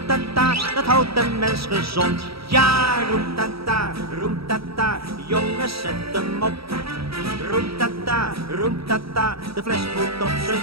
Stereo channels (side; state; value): left; late; 0.76 ms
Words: dat houdt de mens gezond. Ja, roem-ta-ta, jongens zet hem op. Roem-ta-ta, de fles moet op zijn